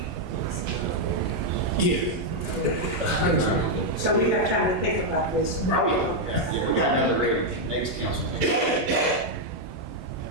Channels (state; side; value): normal; both; correlation -0.01